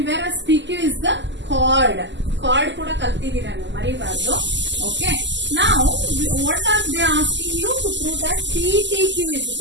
whereas PQ is the chord. Chord ಕೂಡ ಕಲ್ತಿದ್ದೀರಾ ನೀವು ಮರಿಬಾರ್ದು. Okay. Now what are they asking you to prove that PTQ is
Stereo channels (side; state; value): left; late; 0.53 ms